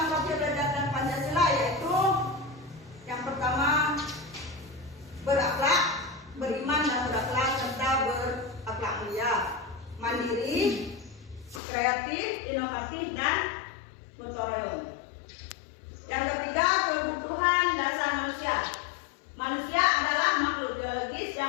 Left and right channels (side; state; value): right; drops out; at 11.6 s